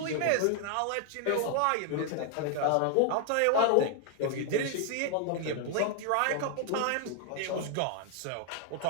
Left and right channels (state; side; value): different; both; correlation 0.00